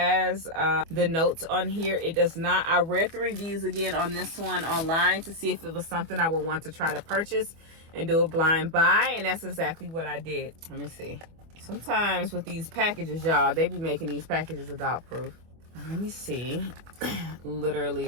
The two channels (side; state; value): left; late; 24 ms